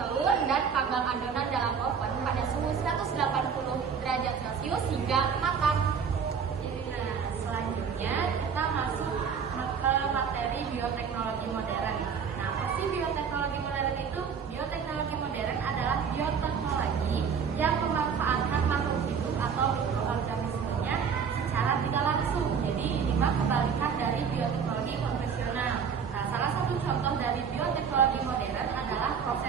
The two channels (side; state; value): left; quieter; 6.6 dB